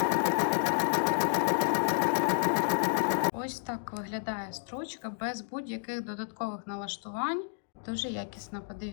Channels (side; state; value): right; silent; digital silence